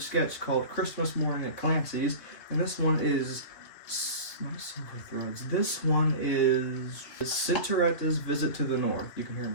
sketch called Christmas Morning at Clancy's, and this one is not Silver Threads. This one is Cinderella's Visit to the North. You can hear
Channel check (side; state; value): right; late; 3.3 ms